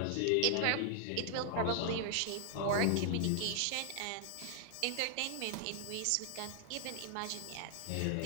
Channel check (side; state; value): both; different; correlation 0.00